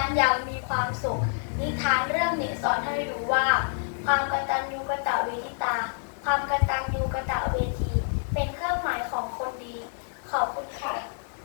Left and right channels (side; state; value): right; silent; 60 dB below the other